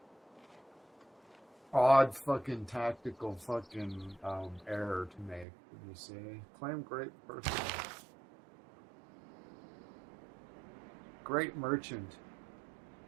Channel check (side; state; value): left; drops out; at 5.5 s